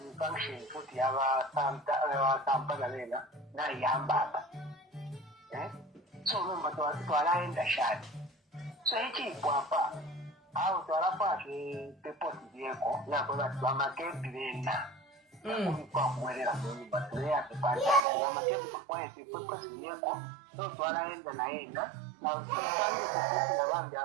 function futi yabasampana lena nayambaba so nomba twalaenda shati so ekipwapa awo twalapake pepoti byeko nakwe bati bamakebi bena kwakuwerera munyumba tuleyatepaamakebi tukwaete pepoti byeko so twalaenda nayena nabambi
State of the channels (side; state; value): left; drops out; at 18.1 s